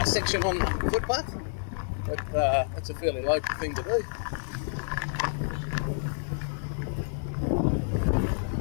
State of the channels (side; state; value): right; silent; 59 dB below the other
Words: section on the footpath. But that's a fairly local thing to do.